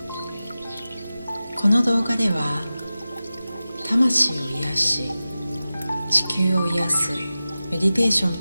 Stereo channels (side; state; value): both; inverted; correlation -0.95